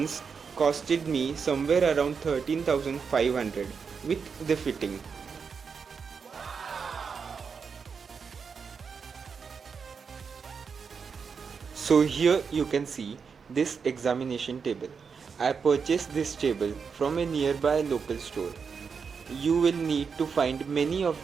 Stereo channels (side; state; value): left; quieter; 5.8 dB